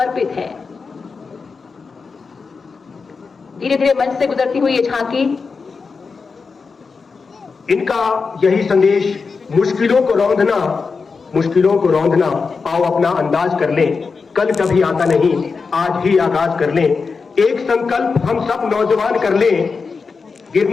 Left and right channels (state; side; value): quieter; right; 4.8 dB